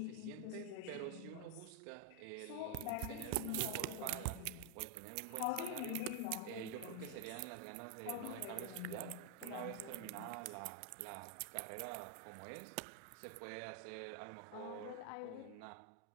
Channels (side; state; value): both; different; correlation 0.00